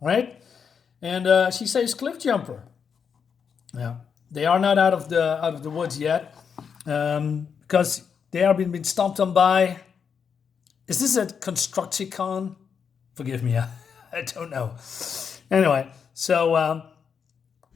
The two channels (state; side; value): quieter; right; 6.7 dB